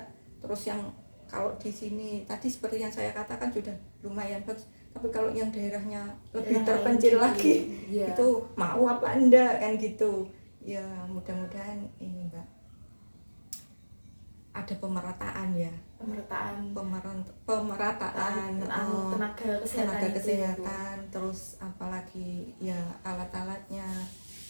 Terus yang kalau di sini tadi seperti yang saya katakan sudah lumayan bagus, tapi kalau yang daerahnya lebih terpencil lagi, itu mau apa enggak kan gitu. Ya mudah-mudahan ini Mbak ada pemerataan ya, pemerataan tenaga kesehatan, terus apalagi ya alat-alatnya.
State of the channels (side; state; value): both; inverted; correlation -1.00